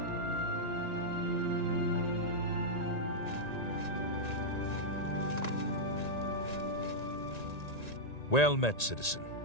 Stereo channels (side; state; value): right; late; 1.8 ms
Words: Well met, citizen.